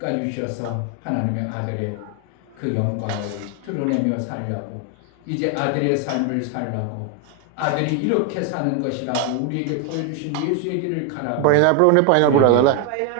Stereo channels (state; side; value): different; both; correlation 0.01